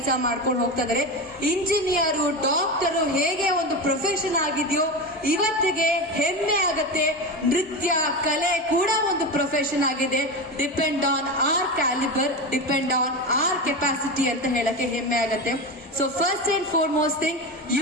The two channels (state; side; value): normal; both; correlation 0.21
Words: ಮಾಡ್ಕೊಂಡು ಹೋಗ್ತಾ ಇದ್ದಾರೆ. ಇಂಜಿನಿಯರು, ಡಾಕ್ಟರು ಹೇಗೆ ಒಂದು ಪ್ರೊಫೆಷನ್ ಆಗಿದೆಯೋ ಇವತ್ತಿಗೆ ಹೆಮ್ಮೆ ಆಗತ್ತೆ. ನೃತ್ಯ ಕಲೆ ಕೂಡ ಒಂದು ಪ್ರೊಫೆಷನ್ ಆಗಿದೆ. Depend on our calibre, depend on our capacity ಅಂತ ಹೇಳಕ್ಕೆ ಹೆಮ್ಮೆ ಆಗತ್ತೆ. So first and foremost thing,